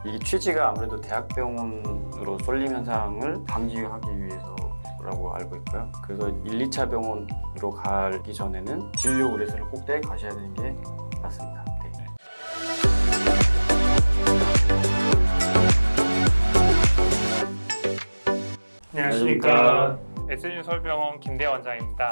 이게 취지가 아무래도 대학병원으로 쏠림 현상을 방지하기 위해서라고 알고 있고요. 그래서 1, 2차 병원으로 가기 전에는 진료 의뢰서를 꼭 떼 가셔야 되는 게 맞습니다. 네. 안녕하십니까. SNU 서울병원 김대원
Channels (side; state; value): both; inverted; correlation -1.00